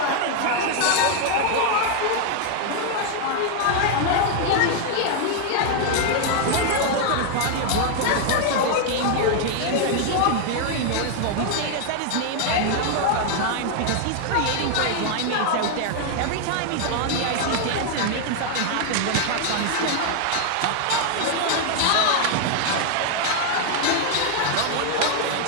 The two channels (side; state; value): both; different; correlation 0.00